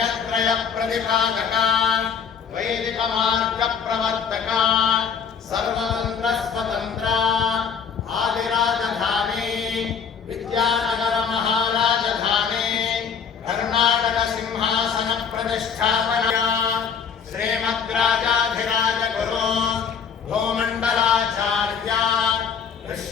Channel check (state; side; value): quieter; right; 6.8 dB